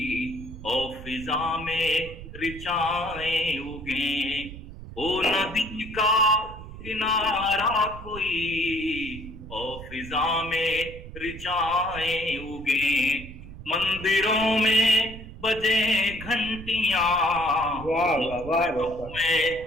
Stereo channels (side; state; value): right; noise; rumble, 13 dB below the sound